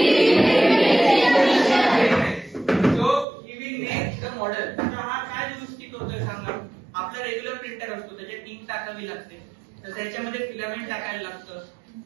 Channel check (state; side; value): drops out; left; at 3.2 s